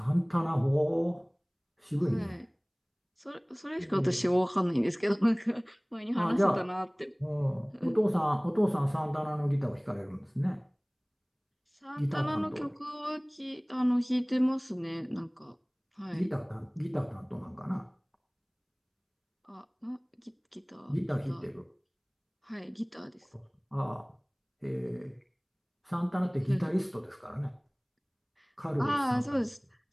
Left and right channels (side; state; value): both; identical; correlation 1.00